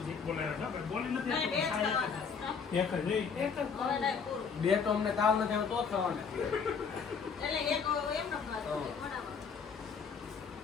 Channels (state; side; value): quieter; right; 6.0 dB